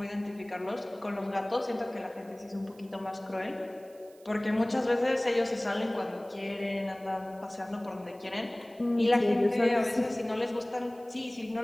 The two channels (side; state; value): right; noise; hiss, 28 dB below the sound